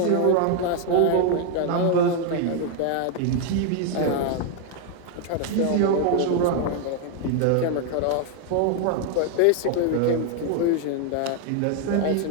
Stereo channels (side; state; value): both; different; correlation 0.00